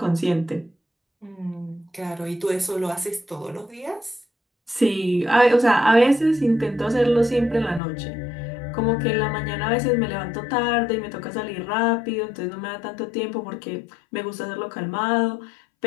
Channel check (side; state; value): right; drops out; at 7.8 s